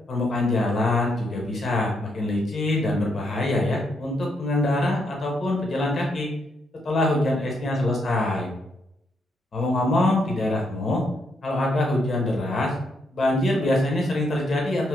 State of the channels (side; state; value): both; normal; correlation 0.77